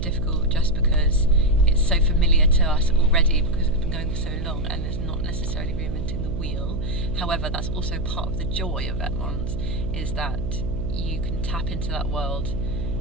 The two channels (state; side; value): noise; right; hum, 4 dB below the sound